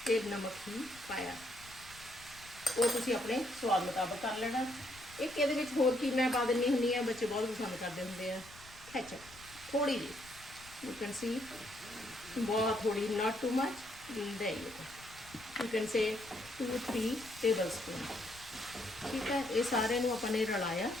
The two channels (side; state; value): left; noise; rumble, 21 dB below the sound